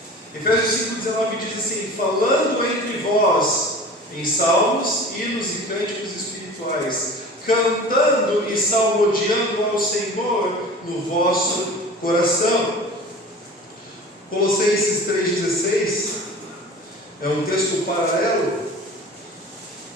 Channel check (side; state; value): both; normal; correlation 0.39